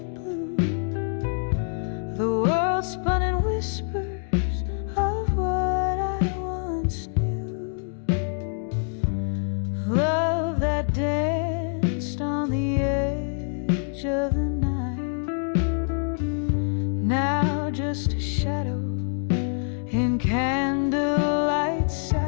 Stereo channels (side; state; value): right; silent; 61 dB below the other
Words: edge of the night. Now just a shadow in candlelight